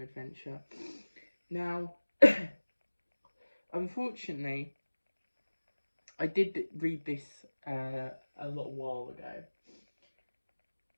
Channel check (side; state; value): both; inverted; correlation -1.00